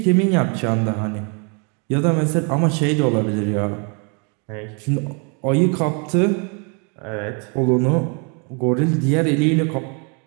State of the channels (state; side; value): quieter; left; 35.7 dB